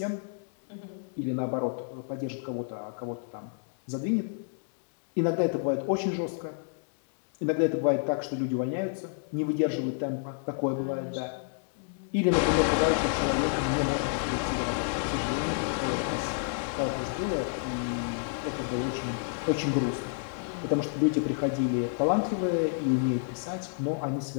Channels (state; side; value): silent; right; digital silence